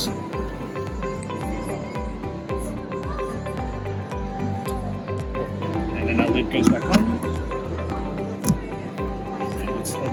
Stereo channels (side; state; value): both; identical; correlation 1.00